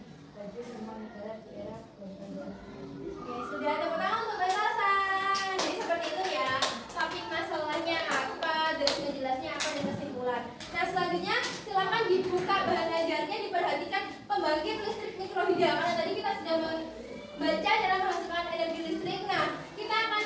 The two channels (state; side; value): identical; both; correlation 1.00